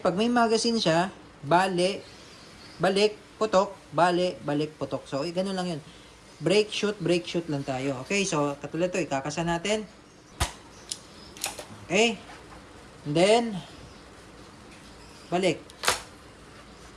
pag may magazine siya, balik, putok, balik, putok. So, ganun lang yun. Brake, shoot lang tayo. Okay? So, katulad ito, ikakasa natin. Okay? And then, balik.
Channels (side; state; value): both; identical; correlation 1.00